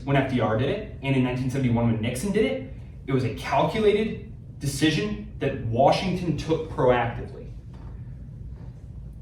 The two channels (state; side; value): identical; both; correlation 1.00